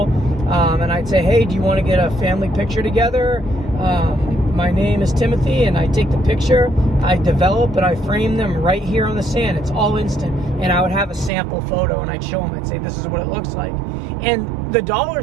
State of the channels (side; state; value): left; drops out; at 11.3 s